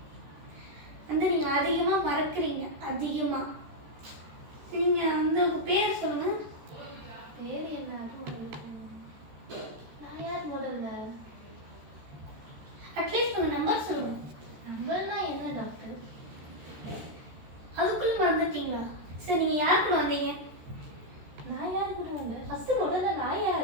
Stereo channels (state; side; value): late; left; 14 ms